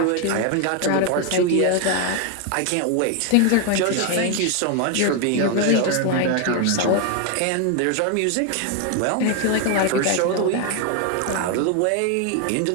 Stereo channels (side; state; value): both; different; correlation 0.01